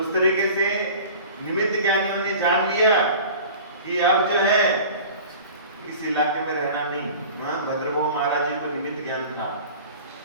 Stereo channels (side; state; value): both; inverted; correlation -0.40